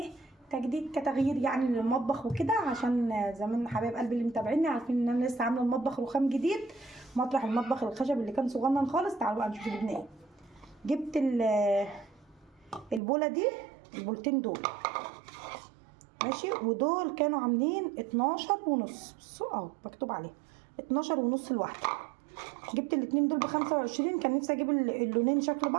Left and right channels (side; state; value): left; drops out; at 13.0 s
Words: تجديد كتغيير يعني للمطبخ وكده، عشان زمان حبايب قلبي اللي متابعيني عارفين ان انا لسه عامله المطبخ رخام جديد مطرح المطبخ الخشب اللي كان صغنن خالص. تعالوا بقى نشوف جبنا ايه. جبت البوله دي، البولتين دول ماشي، ودول كانوا عاملين 12 ونص. بصوا اهو مكتوب عليه 12 ونص الواحده. جبت الاتنين دول ب25. كان نفسي اجيب اللونين شكل